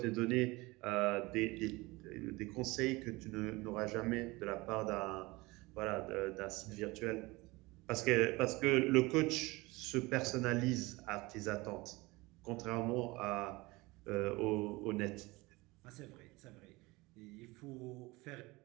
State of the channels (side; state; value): left; quieter; 22.5 dB